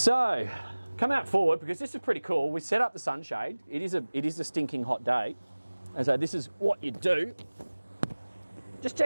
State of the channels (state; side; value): inverted; both; correlation -1.00